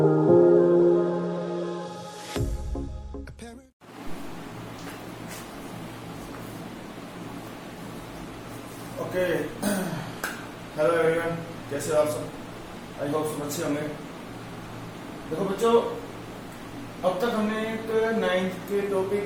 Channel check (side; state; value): both; identical; correlation 1.00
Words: हेलो एवरीवन, कैसे हो आप सब? आई होप सब अच्छे होंगे। देखो बच्चों, अब तक हमने एक 9th के टॉपिक